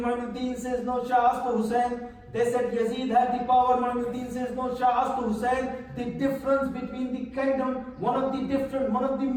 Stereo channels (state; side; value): identical; both; correlation 1.00